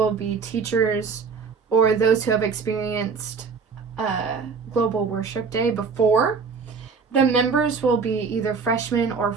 be teachers or those who have experienced Global Worship Day before. The members will be either freshmen or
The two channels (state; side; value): quieter; left; 5.2 dB